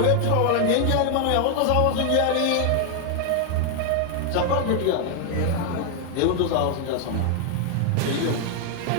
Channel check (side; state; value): both; different; correlation 0.00